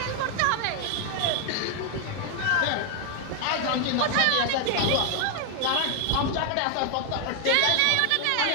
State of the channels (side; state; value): both; different; correlation 0.01